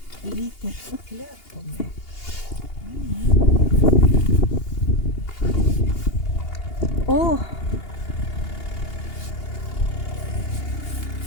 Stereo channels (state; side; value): late; right; 2.8 ms